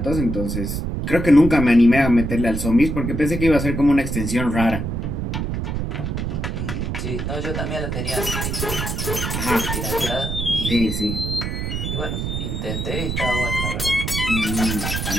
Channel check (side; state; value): right; noise; rumble, 3 dB below the sound